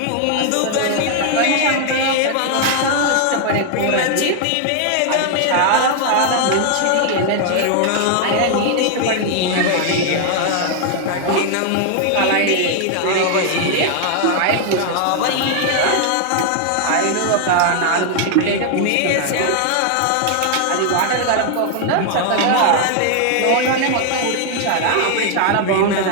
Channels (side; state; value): both; different; correlation 0.00